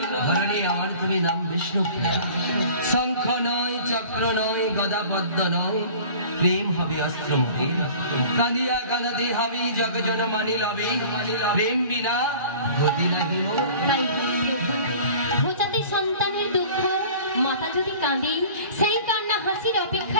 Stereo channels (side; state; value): both; inverted; correlation -0.45